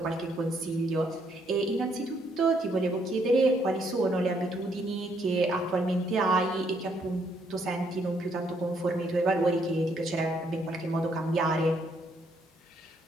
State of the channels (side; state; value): both; normal; correlation 0.71